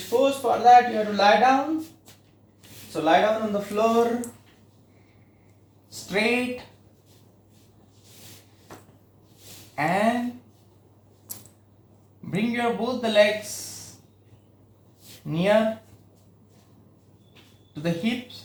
pose. For that, you have to lie down. So lie down on the floor, straight, and bring your both the legs near to the hips.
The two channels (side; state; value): both; identical; correlation 1.00